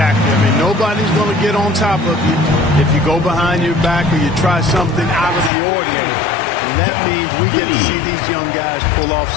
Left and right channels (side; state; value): right; drops out; at 5.5 s